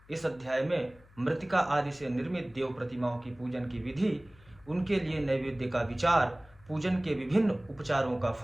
इस अध्याय में मृतिका आदि से निर्मित देव प्रतिमाओं की पूजन की विधि, उनके लिए नैवेद्य का विचार, पूजन के विभिन्न उपचारों का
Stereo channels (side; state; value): left; noise; hum, 26 dB below the sound